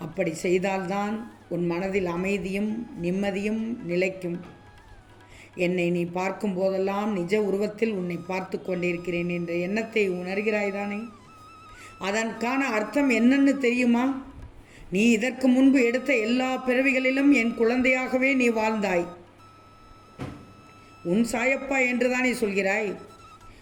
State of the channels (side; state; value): both; identical; correlation 1.00